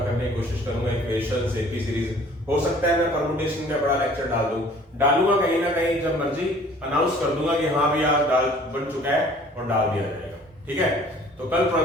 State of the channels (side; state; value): both; normal; correlation 0.52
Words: करने की कोशिश करूंगा। इक्वेशंस, एपी सीरीज, हो सकता है मैं परम्यूटेशन का बड़ा लेक्चर डालूंगा कहीं ना कहीं, जब मर्जी अनाउंस कर दूंगा कि हाँ भी आज डाल बन चुका है और डाल दिया जाएगा, ठीक है। तो कल